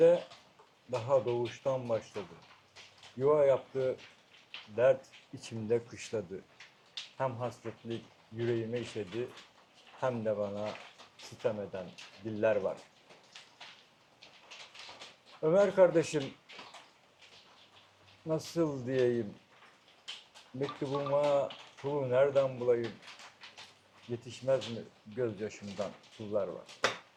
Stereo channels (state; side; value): identical; both; correlation 1.00